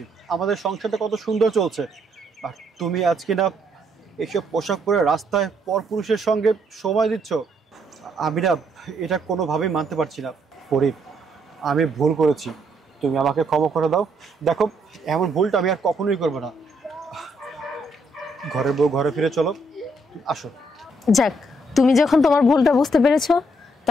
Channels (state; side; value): normal; both; correlation 0.72